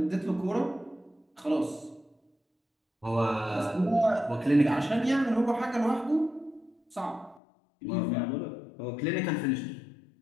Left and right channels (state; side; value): drops out; right; at 7.4 s